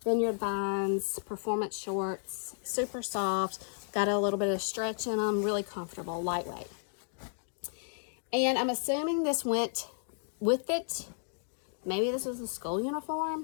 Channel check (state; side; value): silent; right; digital silence